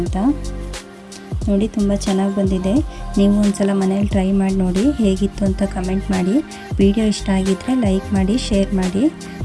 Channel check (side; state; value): both; identical; correlation 1.00